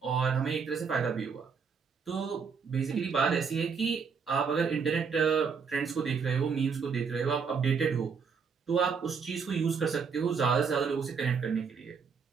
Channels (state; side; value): quieter; left; 5.9 dB